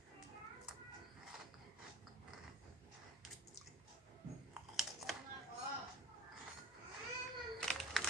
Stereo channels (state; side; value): normal; both; correlation 0.41